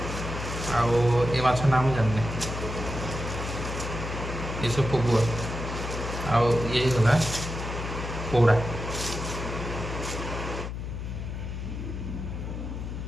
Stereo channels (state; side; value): noise; left; hum, 6 dB below the sound